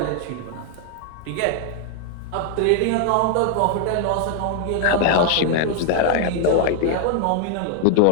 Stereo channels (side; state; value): both; different; correlation 0.00